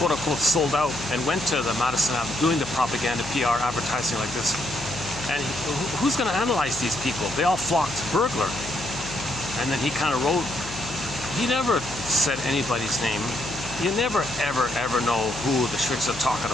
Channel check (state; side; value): noise; left; hum, 14 dB below the sound